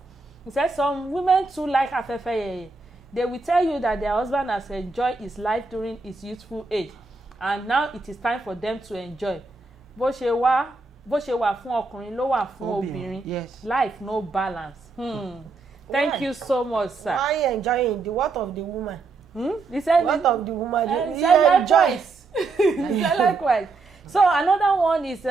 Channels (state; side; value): quieter; left; 3.9 dB